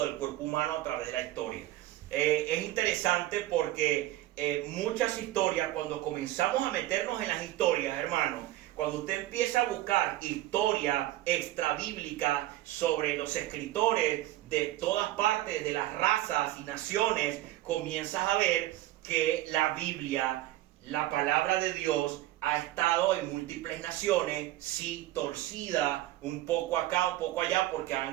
del cuerpo humano a través de la historia. Es interesante porque muchas historias, cuando comenzamos a meternos en las historias, hermanos, cuando usted empieza a buscar historia extrabíblica sobre los escritores de todas partes, de las razas y naciones, comienzas a ver que la Biblia, la palabra de Dios, ha estado en múltiples naciones, sí, torcida, un poco acá, un poco allá, porque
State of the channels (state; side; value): quieter; left; 15.6 dB